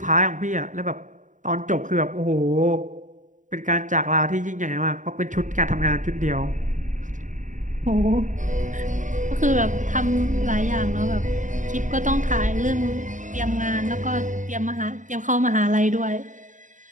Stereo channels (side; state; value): left; late; 0.37 ms